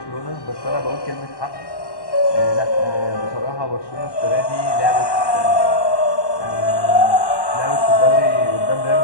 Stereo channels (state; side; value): late; right; 1.1 ms